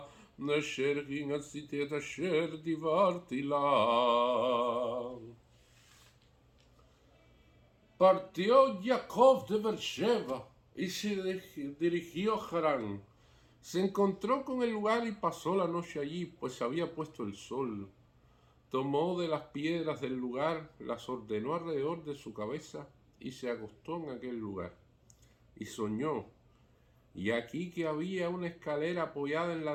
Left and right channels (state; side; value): identical; both; correlation 1.00